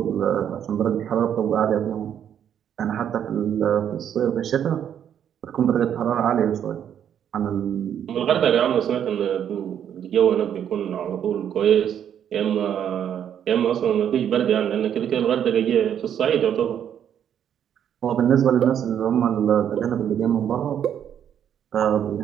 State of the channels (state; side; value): quieter; left; 9.3 dB